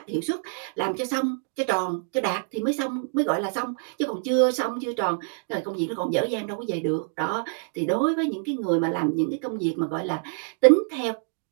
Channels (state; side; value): silent; left; digital silence